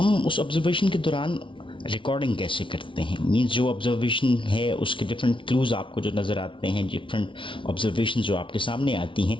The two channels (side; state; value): right; late; 0.25 ms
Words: उस ऑब्जर्वेशन के दौरान रिकॉर्डिंग कैसे करते हैं। मींस जो ऑब्जर्वेशन है उसके डिफरेंट क्लूज़ आपको जो नज़र आते हैं, डिफरेंट ऑब्जर्वेशन जो आपके सामने आती हैं,